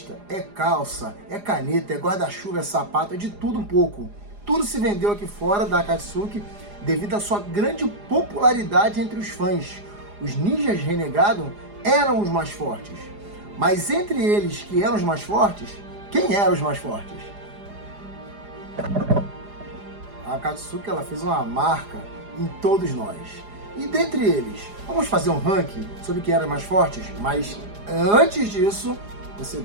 é calça, é caneta, é guarda-chuva, é sapato, é de tudo um pouco. Tudo se vendeu aqui fora da Akatsuki devido à sua grande popularidade entre os fãs. Os ninjas renegados eram os mais fortes. Mas entre eles que eram os mais fortes, quem eram os mais fortes? A Akatsuki, ela fez uma marca em todos nós. E dentre eles, vamos fazer um ranking sobre quem eram mais fortes? Mas antes disso, você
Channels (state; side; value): late; left; 4.9 ms